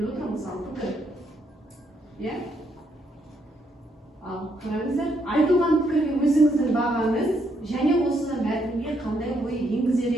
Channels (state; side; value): normal; both; correlation 0.74